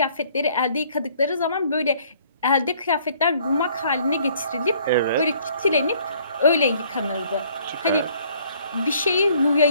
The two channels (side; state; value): both; inverted; correlation -0.60